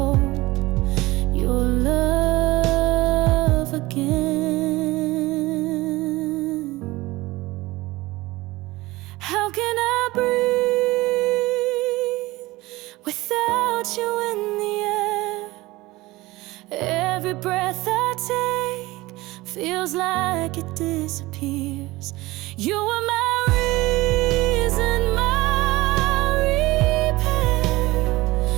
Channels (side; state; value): left; quieter; 19.9 dB